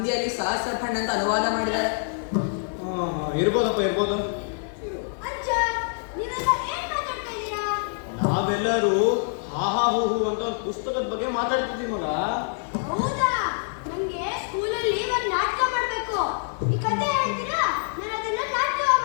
ಸಹಸ್ರಖಂಡ ಅಂತ ಅನುವಾದ ಮಾಡಿದ್ದಾರೆ. ಇರ್ಬೋದು. ನಾವೆಲ್ಲರೂ ಹಾ ಹಾ ಹೂ ಹೂ ಅಂತ ಒಂದು ಪುಸ್ತಕದ ಬಗ್ಗೆ ಮಾತಾಡ್ತಿದ್ದೀವಿ ಮಗ. ಹೌದಾ? ನನಗೆ ಸ್ಕೂಲಲ್ಲಿ ಒಂದು ನಾಟಕ ಮಾಡಬೇಕು. ಈ ಕಥೆ ಹೇಳ್ತೀರಾ? ನಾನು ಅದನ್ನ ನಾಟಕ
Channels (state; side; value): silent; right; digital silence